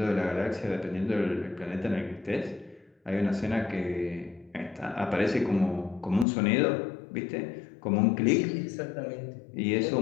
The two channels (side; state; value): right; drops out; at 6.2 s